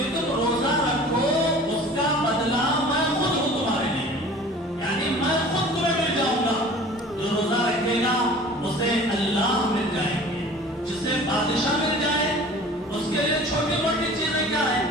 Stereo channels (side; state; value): both; normal; correlation 0.44